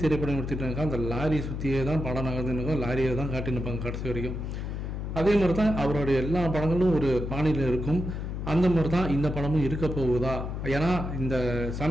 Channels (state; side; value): noise; left; hum, 4 dB below the sound